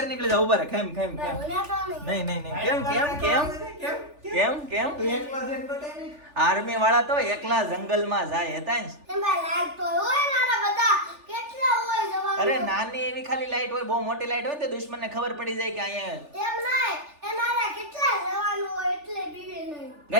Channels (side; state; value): left; late; 3.4 ms